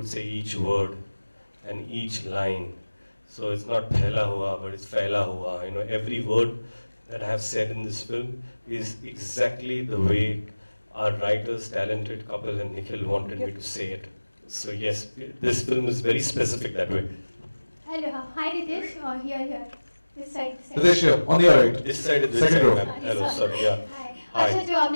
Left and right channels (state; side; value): inverted; both; correlation -1.00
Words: say each word and each line. So it's not phela hua, but it's fela hua. Every word that I have said in this film is exactly the way our writers, talented couple, and Nikhil wanted me to say it. So yes, this film is very specific that way. Hello, hi Ritesh, here. This side. Ritesh here, on your right. This side is Second row. Hello, sorry, yeah. Hi. अच्छा, जो